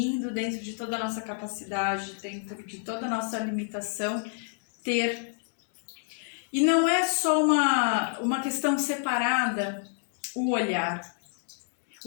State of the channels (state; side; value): silent; right; 56 dB below the other